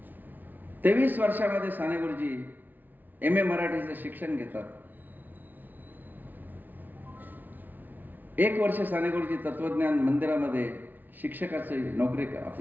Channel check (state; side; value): late; left; 0.085 ms